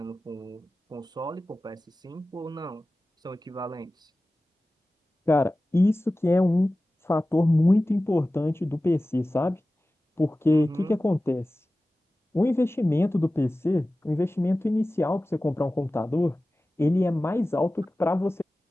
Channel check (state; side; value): normal; both; correlation 0.96